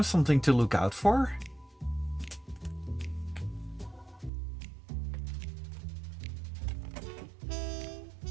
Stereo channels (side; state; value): left; drops out; at 4.3 s